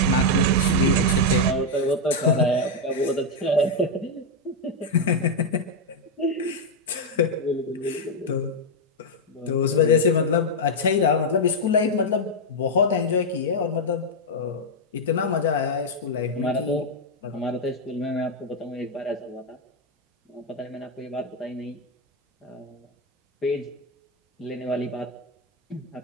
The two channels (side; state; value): both; normal; correlation 0.00